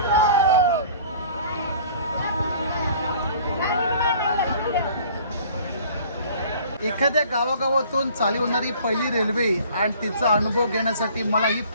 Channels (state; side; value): inverted; both; correlation -0.50